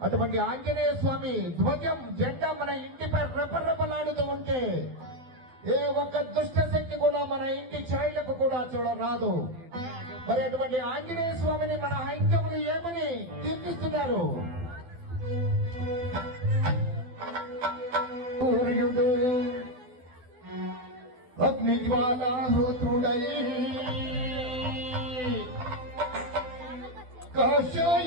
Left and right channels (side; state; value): left; late; 12 ms